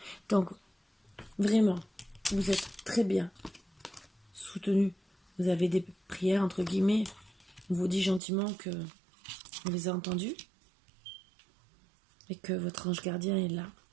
Donc, vraiment, vous êtes très bien soutenu. Vous avez des prières, entre guillemets. On vous dit gentiment que on les a entendues. Et que votre ange gardien est là.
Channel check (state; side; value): drops out; left; at 8.2 s